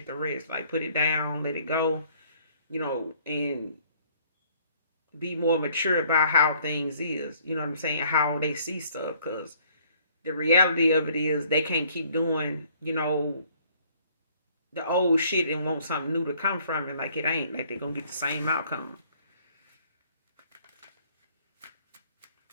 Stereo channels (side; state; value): both; inverted; correlation -0.60